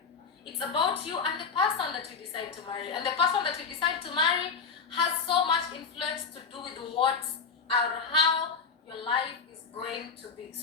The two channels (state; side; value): quieter; right; 5.3 dB